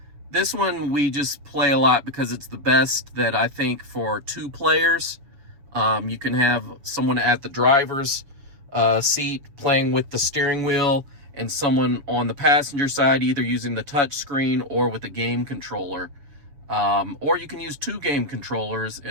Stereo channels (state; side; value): late; left; 7.1 ms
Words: This one we just play a lot because it's the best that I think for 2 players. You can have someone at the driver's seat playing with the steering wheel and someone on the passenger side either using the touch screen or with a game controller. Or you can use 2 game controllers